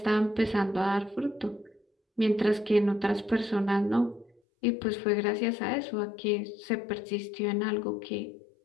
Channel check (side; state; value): right; drops out; at 4.4 s